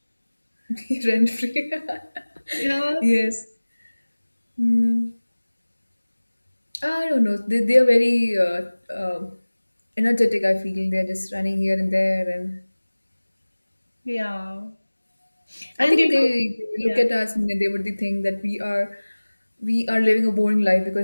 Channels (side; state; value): both; inverted; correlation -1.00